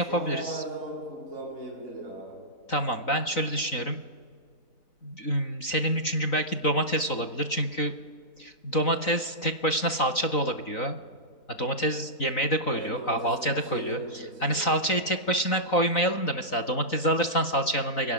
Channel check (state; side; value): late; right; 3.9 ms